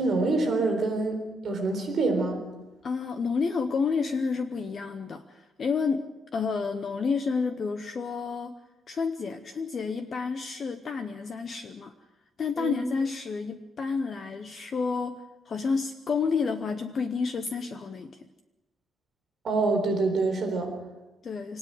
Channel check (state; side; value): normal; both; correlation 0.77